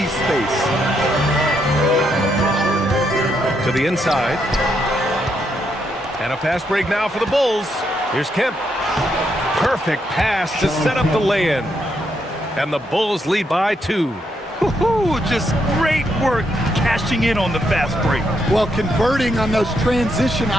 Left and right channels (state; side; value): normal; both; correlation 0.78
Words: space. To the inside. And a fast break now for the Bulls. Here's Kemp. Perfect pass to set up the lay-in. And the Bulls lead by 2. Just great work cashing in on the fast break. Well, converting on those transition